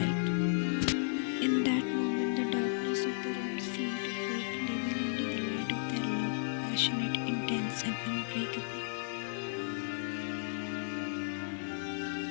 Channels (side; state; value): right; silent; digital silence